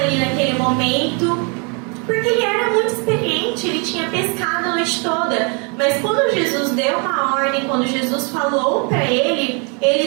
naquele momento, porque ele era muito experiente, ele tinha pescado a noite toda. Mas quando Jesus deu uma ordem, quando Jesus falou para ele,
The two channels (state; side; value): quieter; left; 35.3 dB